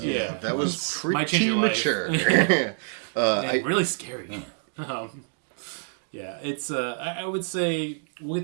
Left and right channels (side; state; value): left; silent; digital silence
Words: That was pretty Might change your life. mature. Yeah, really scary. Yeah, it's I would say we'll